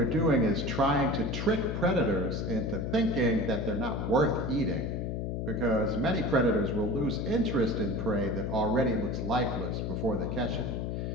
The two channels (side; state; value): left; noise; hum, 2 dB below the sound